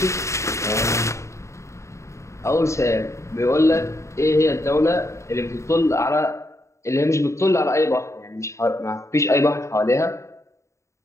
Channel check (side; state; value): right; late; 0.14 ms